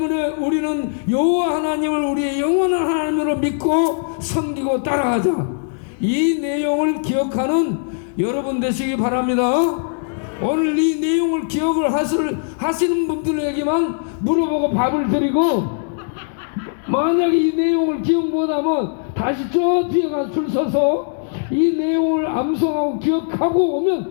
우리는 여호와 하나님을 우리의 영원한 하나님으로 믿고 섬기고 따라가자. 이 내용을 기억하는 여러분 되시기 바랍니다. 오늘 이 내용을 기억을 하시는 분들에게만 물어보고 밥을 드리고, 만약에 이 내용을 기억 못하면 다시 저 뒤에 가서 줄 서서 이 내용을 암송하고 기억하고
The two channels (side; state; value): right; silent; 66 dB below the other